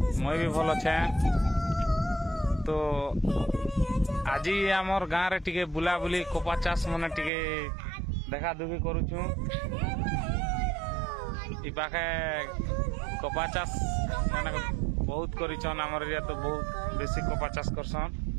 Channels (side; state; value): left; drops out; at 7.3 s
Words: मैं भी भल अच्छे। तो आज आमर गाँव रे टिके बुला बुली कपा चाष मने टिके देखा दुखी करूछु। इ पाखे कपा चाष माने बहुत करिछन, आमर एरिया तो बहुत बेसी कपा चाष करसन।